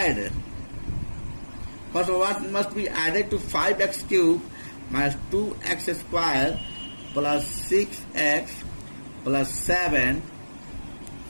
first what must be added to 5x cube minus 2x square plus 6x plus 7.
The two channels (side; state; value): both; inverted; correlation -1.00